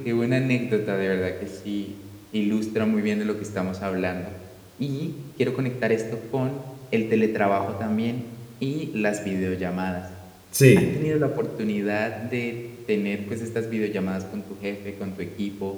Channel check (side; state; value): both; identical; correlation 1.00